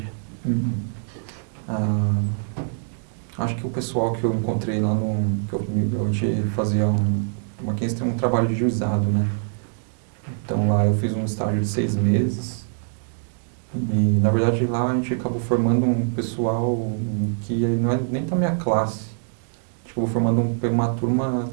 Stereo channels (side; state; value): left; silent; digital silence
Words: Uhum. Ah, acho que o pessoal que eu encontrei lá a gente fazia o Mackenzie tem um trabalho de juizado, né? Então lá eu fiz um estágio de 6 meses e na verdade lá a gente acabou formando um pessoal que não é nem da minha classe. A gente acabou formando uma turma